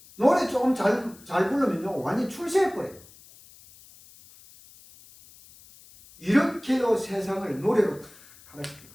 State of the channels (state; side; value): noise; left; hiss, 23 dB below the sound